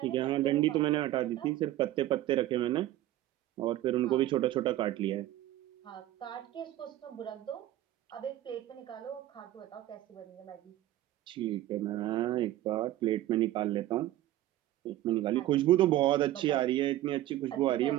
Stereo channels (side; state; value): left; quieter; 14.5 dB